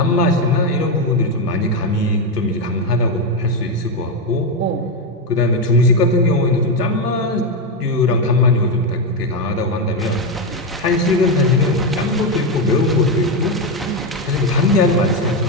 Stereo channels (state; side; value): normal; both; correlation 0.08